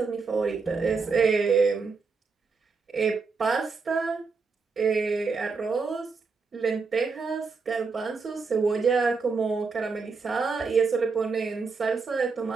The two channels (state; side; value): quieter; left; 4.7 dB